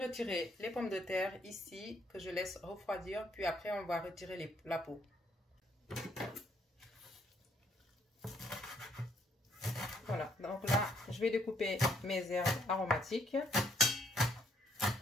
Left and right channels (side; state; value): both; normal; correlation 0.68